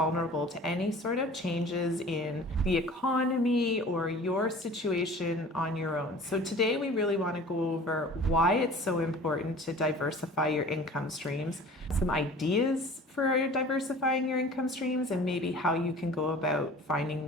to any sort of changes in the economy or your situation on your own. So today we really want to go over why it's so important to diversify your income streams, some ideas for diversifying your income streams, and maybe how you can go about finding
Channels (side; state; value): both; normal; correlation 0.44